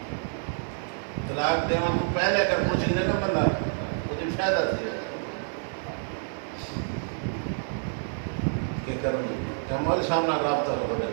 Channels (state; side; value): silent; left; digital silence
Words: طلاق دینا تو پہلے اگر پوچھ لے نا بندہ مجھے فائدہ دیا کہ کروں کیا مول سامنا رابطہ ہو